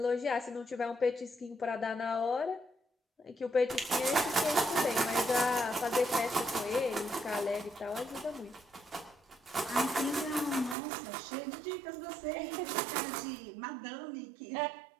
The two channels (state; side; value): drops out; left; at 10.8 s